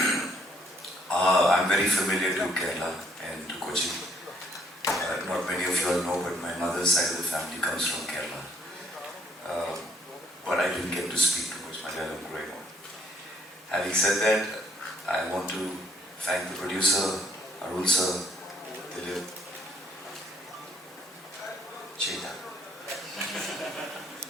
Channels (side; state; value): both; normal; correlation 0.66